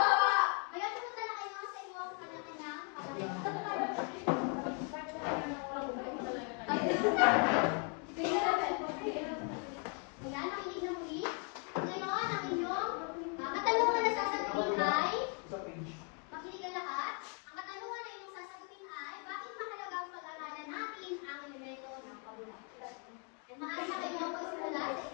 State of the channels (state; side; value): quieter; right; 37.7 dB